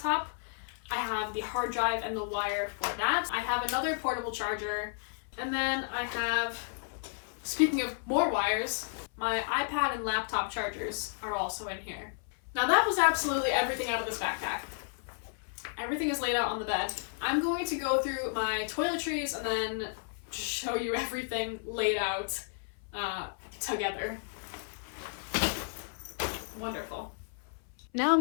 I have the hard drive and the wire for that. I have another portable charger. And then I have, speaking of more wires, my iPad and laptop chargers are also in here. Now that was absolutely everything out of this backpack. Everything is laid out on the bed. I'm going to go through my toiletries and then show you everything laid out together. Wonderful. Now I'm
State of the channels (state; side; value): silent; right; 56 dB below the other